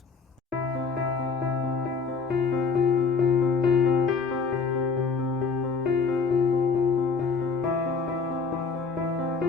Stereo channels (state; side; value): quieter; right; 5.0 dB